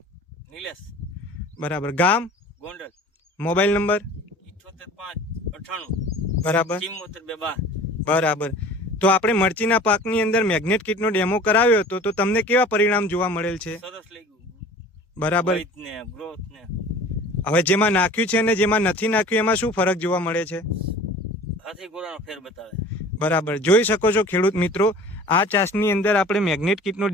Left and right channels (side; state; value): both; normal; correlation 0.43